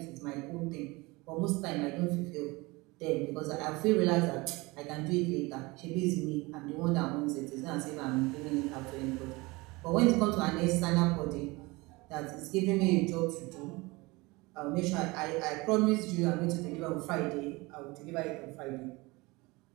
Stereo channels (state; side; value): quieter; left; 23.6 dB